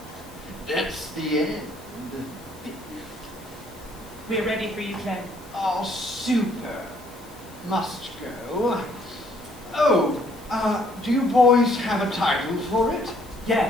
That's the end. We're ready for you, Clem. Oh, super. Must go. Oh, do you boys have a title for it? Yeah,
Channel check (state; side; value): noise; left; hiss, 23 dB below the sound